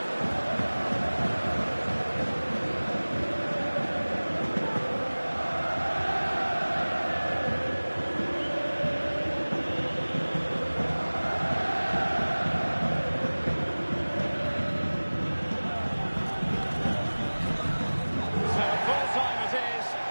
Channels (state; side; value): inverted; both; correlation -1.00